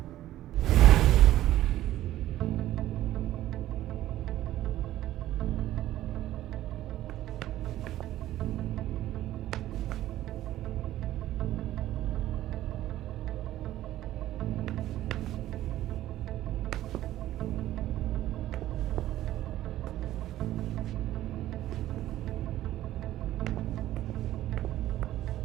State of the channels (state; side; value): quieter; left; 13.9 dB